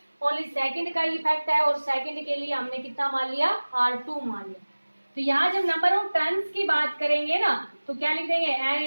ओनली सेकंड का इफेक्ट है, और सेकंड के लिए हमने कितना मान लिया r2 मान लिया। तो यहाँ जब नंबर ऑफ टर्न्स की बात करेंगे ना, तो क्या लिख देंगे n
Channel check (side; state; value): both; inverted; correlation -1.00